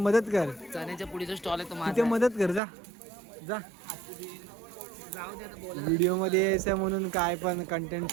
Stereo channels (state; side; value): drops out; left; at 2.6 s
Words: कर चण्याच्या पुढीचा स्टॉल आहे तो तिथे माझा. मदत कर जा जा जाऊ दे आता बोला. व्हिडिओ मध्ये यायचं म्हणून काय पण कंटेंट